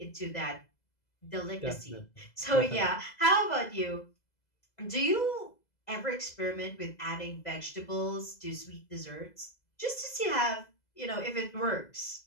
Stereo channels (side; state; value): right; late; 2.0 ms